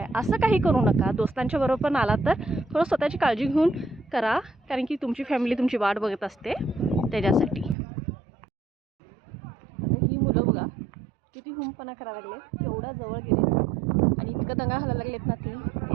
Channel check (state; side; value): drops out; left; at 7.8 s